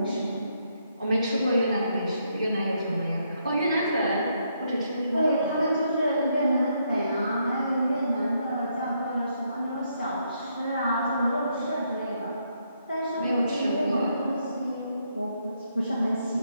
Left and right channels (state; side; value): inverted; both; correlation -0.75